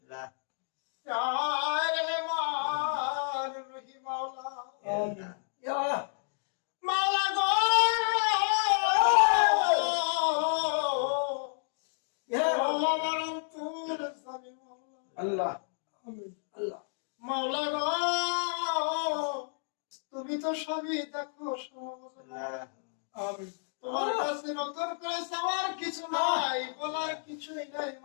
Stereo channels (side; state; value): right; silent; digital silence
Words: ইয়া রহমান রহিম মাওলা ইয়া মাওলা গো ইয়া মাওলা মরতুর সামি মাওলা আল্লাহ আমিন আল্লাহ মাওলা গো তুমি তো সবই দেখো আমিন তোমার কাছে নতুন করে চাওয়ার কিছু নাই বলার কিছুই নাই